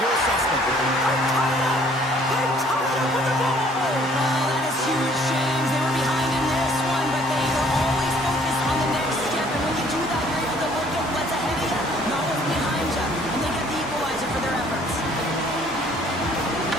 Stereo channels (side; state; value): both; normal; correlation 0.59